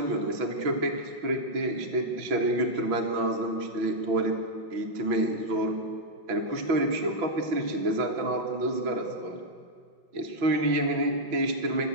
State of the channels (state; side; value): late; left; 6.0 ms